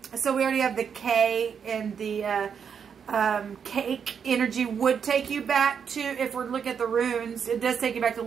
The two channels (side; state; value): left; quieter; 7.1 dB